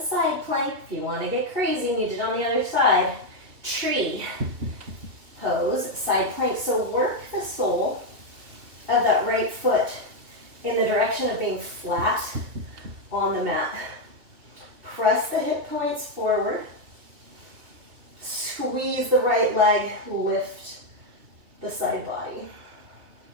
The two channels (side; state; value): left; late; 2.8 ms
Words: side plank. If you want to get crazy and you did on the other side, tree pose, side plank. So work the sole of that right foot in the direction of being flat on the mat. Press the hip points forward. Squeeze the right leg, lift the side body.